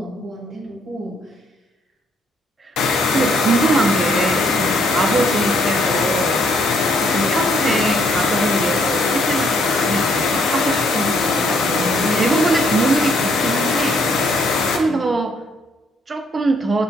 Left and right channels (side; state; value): both; normal; correlation 0.68